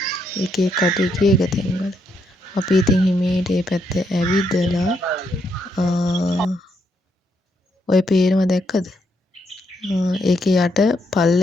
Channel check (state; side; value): normal; both; correlation 0.77